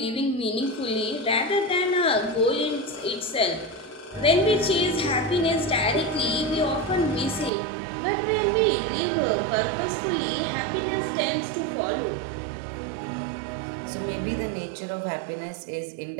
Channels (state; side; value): drops out; left; at 7.5 s